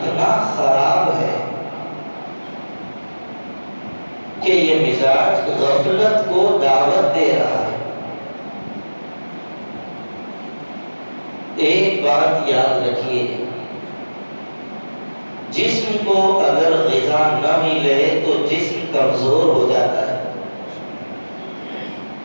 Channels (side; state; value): both; inverted; correlation -1.00